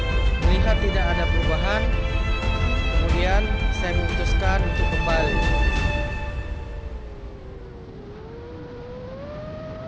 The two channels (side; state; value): both; identical; correlation 1.00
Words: Tidak ada perubahan, kemudian saya memutuskan untuk kembali.